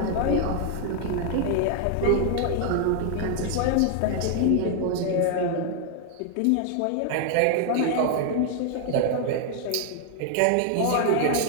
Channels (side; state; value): both; different; correlation 0.00